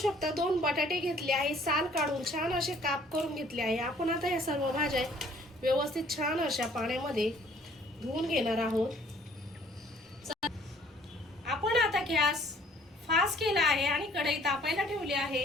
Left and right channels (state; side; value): normal; both; correlation 0.58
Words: 2 बटाटे घेतले आहे, साल काढून छान असे काप करून घेतले आहे। आपण आता या सर्व भाज्या व्यवस्थित छान अशा पाण्यामध्ये धुवून घेणार आहोत। आपण आता गॅस फास्ट केला आहे आणि कढई तापायला ठेवली